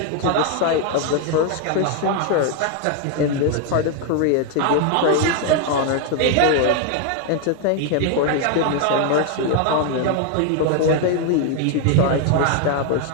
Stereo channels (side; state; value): both; different; correlation 0.01